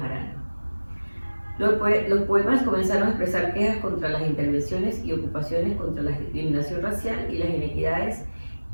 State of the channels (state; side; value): inverted; both; correlation -1.00